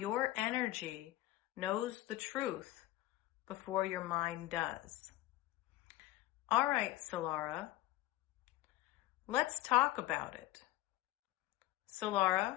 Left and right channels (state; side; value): quieter; right; 16.6 dB